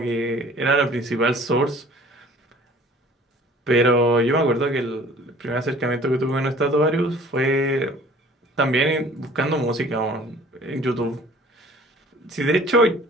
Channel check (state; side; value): normal; both; correlation 0.50